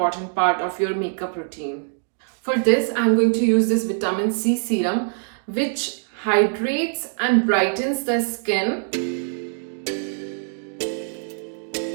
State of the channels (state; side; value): silent; left; digital silence